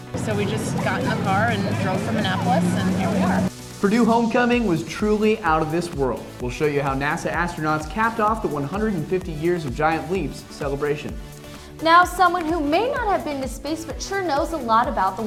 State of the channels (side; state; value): both; identical; correlation 1.00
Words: So we just got in the car and drove from Annapolis, and here we are. Purdue homecoming was truly out of this world. We'll show you how NASA astronauts capped off the 150 Years of Giant Leaps celebration. Now, someone who may not have been to space but sure knows a lot about the